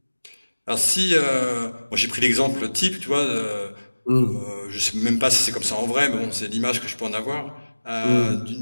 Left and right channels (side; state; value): both; inverted; correlation -1.00